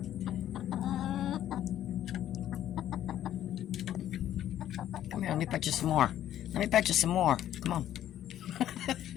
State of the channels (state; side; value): quieter; right; 11.7 dB